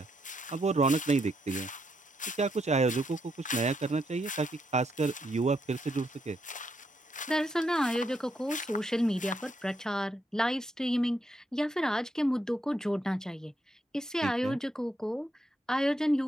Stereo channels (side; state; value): both; normal; correlation 0.78